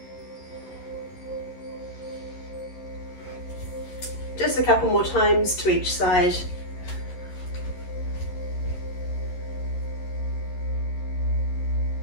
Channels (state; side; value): late; right; 11 ms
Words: Just a couple more times to each side.